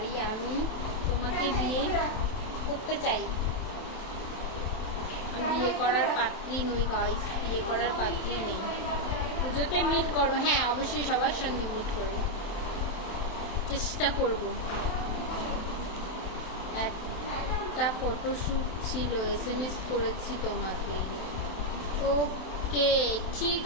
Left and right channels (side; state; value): right; late; 27 ms